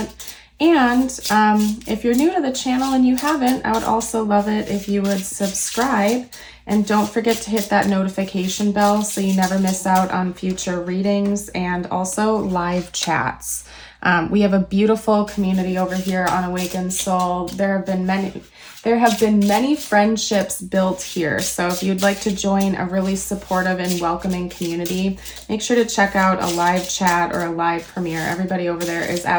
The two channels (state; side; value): identical; both; correlation 1.00